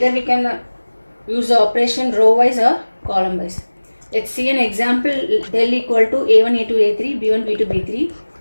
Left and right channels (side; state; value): both; inverted; correlation -1.00